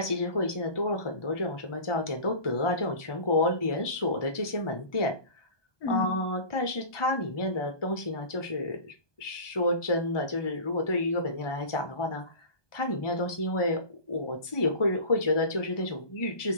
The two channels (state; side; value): late; right; 1.2 ms